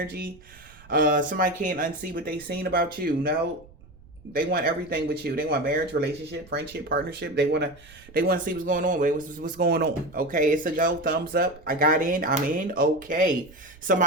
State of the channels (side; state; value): right; noise; rumble, 24 dB below the sound